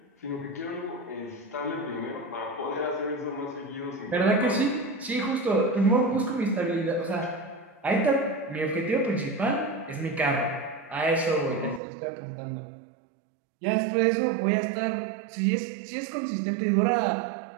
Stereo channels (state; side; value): drops out; left; at 11.8 s